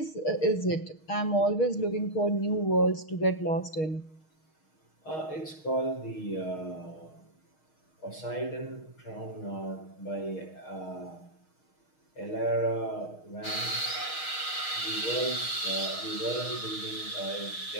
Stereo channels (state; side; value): late; right; 6.4 ms